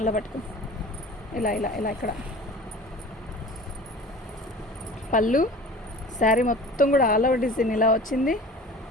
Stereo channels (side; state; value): both; normal; correlation 0.41